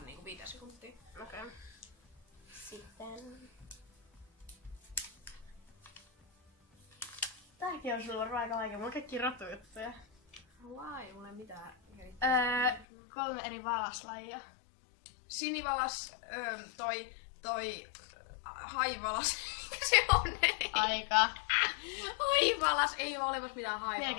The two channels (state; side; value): drops out; right; at 12.9 s